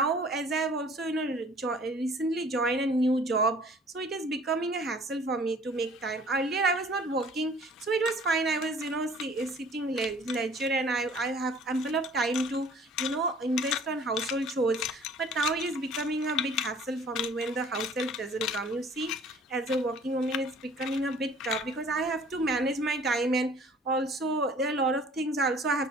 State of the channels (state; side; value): normal; both; correlation 0.52